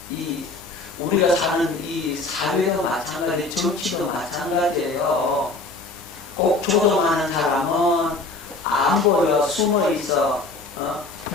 우리가 사는 이 사회도 마찬가지, 정치도 마찬가지예요. 꼭 조종하는 사람은 안 보여, 숨어 있어.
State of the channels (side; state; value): right; quieter; 3.4 dB